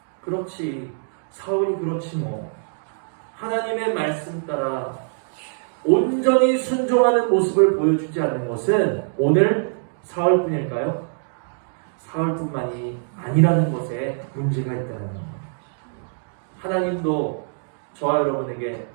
그렇지, 사울이 그렇지 뭐 하나님의 말씀 따라 온전히 순종하는 모습을 보여주지 않는 것은 오늘 사울뿐일까요? 사울뿐만이 아니라는 것에 문제가 있다는 것. 하나님도 저와 여러분에게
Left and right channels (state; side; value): silent; left; digital silence